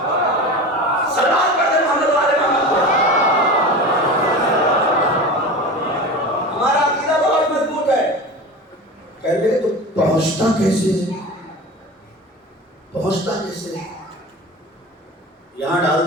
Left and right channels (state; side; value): normal; both; correlation 0.31